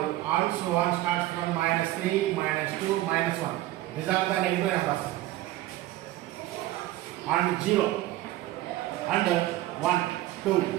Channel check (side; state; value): left; quieter; 15.8 dB